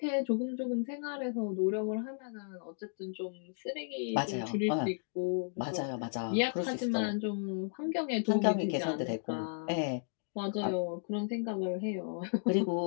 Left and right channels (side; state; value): right; silent; digital silence